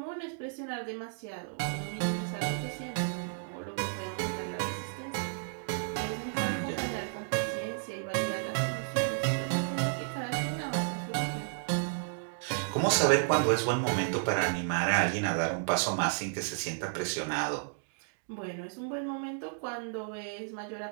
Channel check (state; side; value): silent; left; digital silence